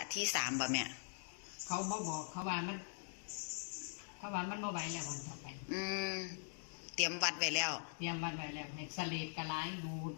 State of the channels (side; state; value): right; silent; digital silence